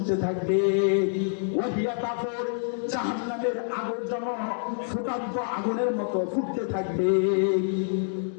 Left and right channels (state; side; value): silent; right; digital silence